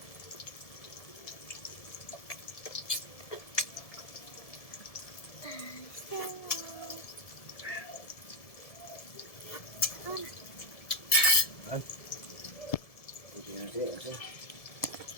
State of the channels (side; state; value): right; late; 1.7 ms